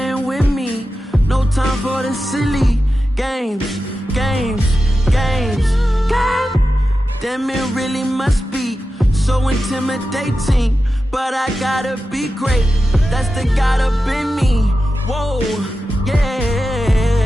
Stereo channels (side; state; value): both; normal; correlation 0.92